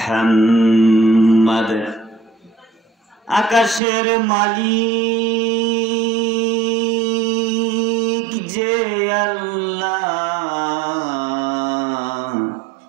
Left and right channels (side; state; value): left; drops out; at 3.8 s